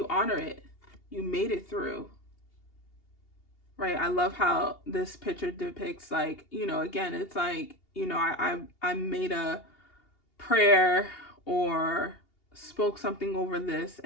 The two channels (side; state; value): right; late; 2.8 ms